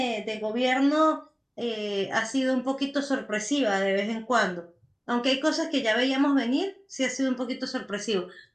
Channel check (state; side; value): identical; both; correlation 1.00